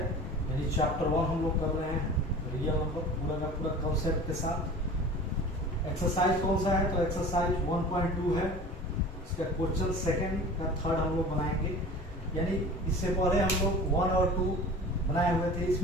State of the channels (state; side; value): normal; both; correlation 0.39